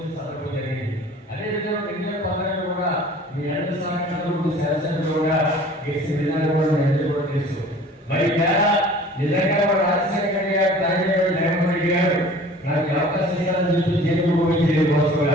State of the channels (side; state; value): both; normal; correlation 0.47